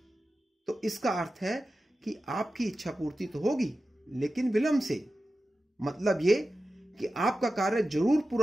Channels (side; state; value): both; normal; correlation 0.93